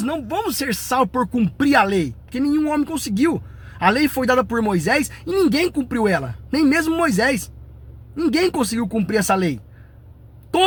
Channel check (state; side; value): identical; both; correlation 1.00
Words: não vamos ser salvos por cumprir a lei, porque nenhum homem conseguiu. A lei foi dada por Moisés e ninguém cumpriu ela, nem mesmo Moisés. Ninguém conseguiu cumprir essa lei.